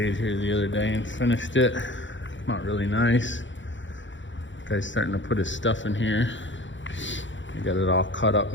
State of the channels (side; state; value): right; late; 0.54 ms